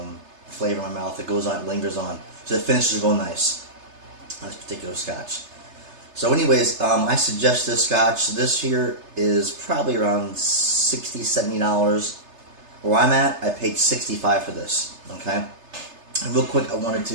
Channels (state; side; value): late; left; 3.3 ms